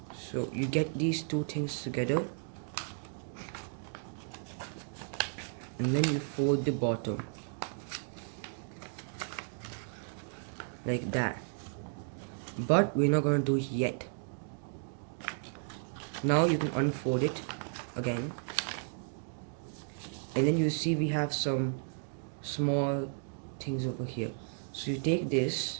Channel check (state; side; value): silent; left; digital silence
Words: So you get these 2 things together and then you fold the bottom like that, but we're not gonna do it yet. Now you can unfold it again, and then you see we have some small things over here. So you take